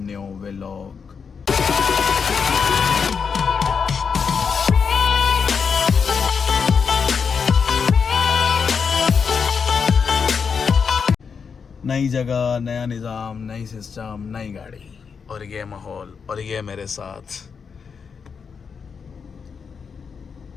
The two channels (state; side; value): quieter; right; 6.0 dB